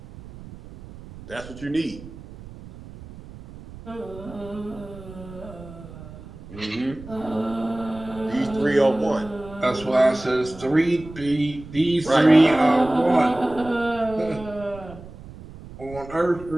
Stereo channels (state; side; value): noise; right; rumble, 16 dB below the sound